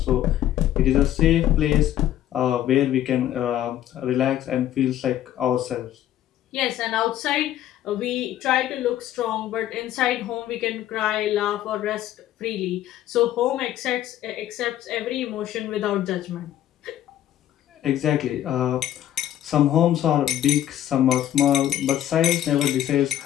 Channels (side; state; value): right; quieter; 12.1 dB